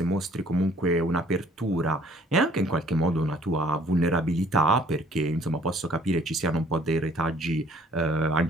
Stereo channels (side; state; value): both; normal; correlation 0.58